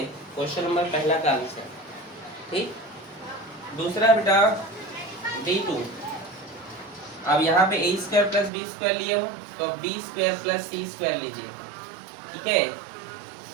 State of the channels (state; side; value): drops out; left; at 8.5 s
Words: क्वेश्चन नंबर पहला का आंसर, ठीक। दूसरा बेटा D2, अब यहाँ पे A square plus B square लिए हो, तो B square plus C square लीजिए, ठीक है।